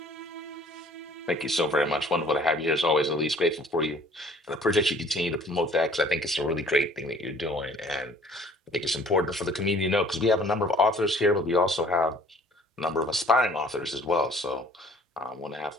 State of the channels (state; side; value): normal; both; correlation 0.53